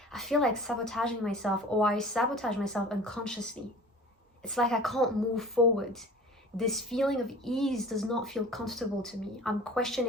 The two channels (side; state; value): both; normal; correlation 0.42